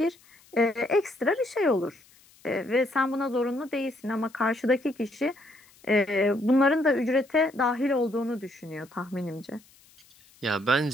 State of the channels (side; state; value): left; noise; hiss, 28 dB below the sound